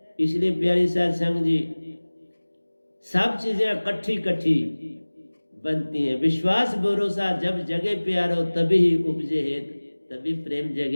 इसलिए प्यारी साध संग जी, सब चीजें इकट्ठी इकट्ठी बनती हैं। विश्वास भरोसा जब जगे प्यारो, तभी ही उपजे हेत, तभी प्रेम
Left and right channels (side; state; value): both; inverted; correlation -1.00